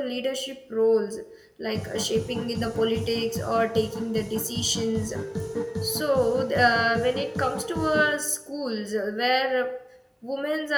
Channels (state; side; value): identical; both; correlation 1.00